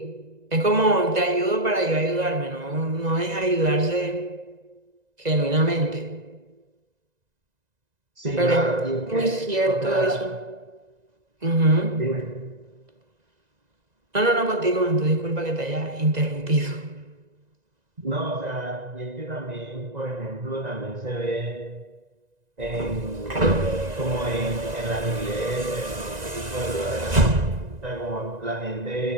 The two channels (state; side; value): late; left; 1.9 ms